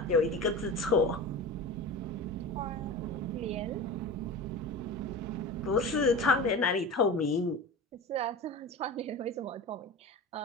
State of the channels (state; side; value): normal; both; correlation 0.31